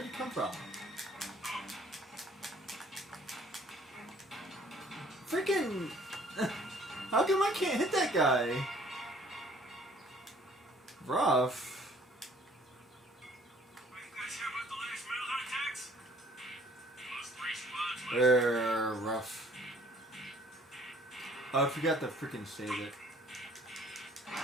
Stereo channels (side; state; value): both; normal; correlation 0.57